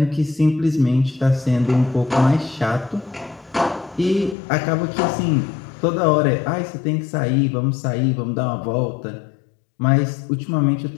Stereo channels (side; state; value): right; drops out; at 4.4 s